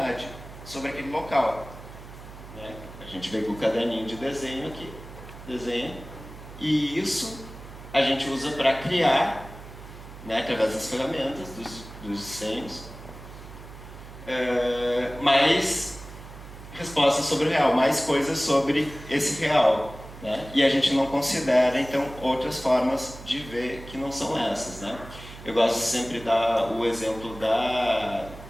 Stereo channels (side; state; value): right; noise; hum, 15 dB below the sound